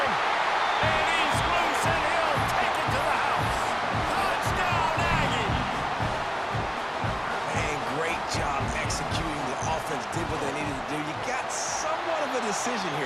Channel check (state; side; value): identical; both; correlation 1.00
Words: And he's loose, and he'll take it to the house. Touchdown, Aggies! And great job executing. The offense did what they needed to do. You got somewhat of a decision